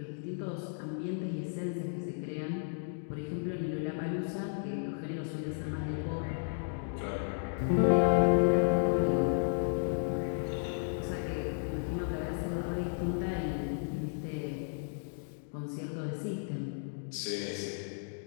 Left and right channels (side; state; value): right; silent; digital silence